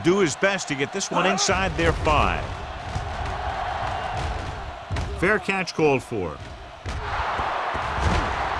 his best to get this one inside their 5. Fair catch called for.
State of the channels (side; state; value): both; identical; correlation 1.00